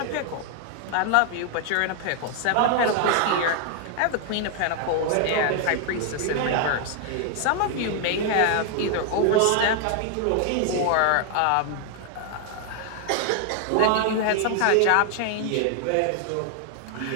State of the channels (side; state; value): both; different; correlation 0.00